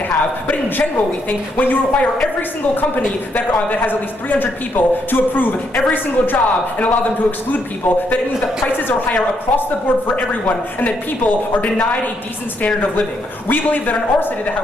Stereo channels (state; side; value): normal; both; correlation 0.76